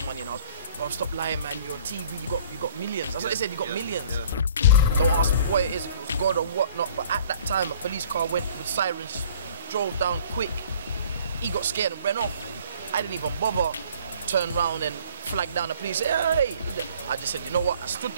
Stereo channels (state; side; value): inverted; both; correlation -0.53